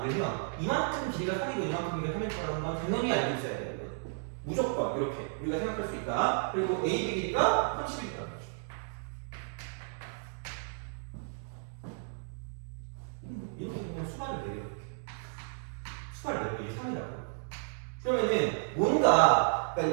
이만큼 길이가 3이고 이만큼 길이가 3일 거라는 건 당연히 알고 있어야 돼요. 무조건 이렇게 우리가 생각할 수 있다. 그리고 AB 길이가 30이다. 이렇게 그냥 수반을 내려 이렇게 수반을 내려 이게 3이라고. 그러면은 뭔가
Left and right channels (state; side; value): silent; left; digital silence